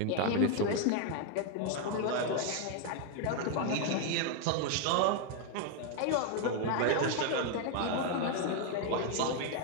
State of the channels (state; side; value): different; both; correlation 0.00